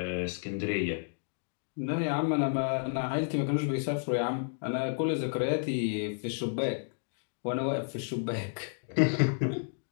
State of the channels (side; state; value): right; silent; digital silence